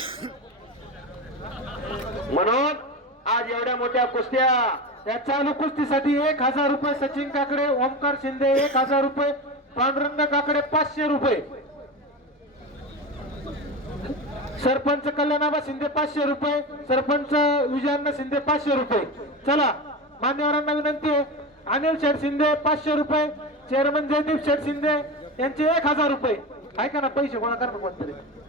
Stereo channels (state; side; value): normal; both; correlation 0.24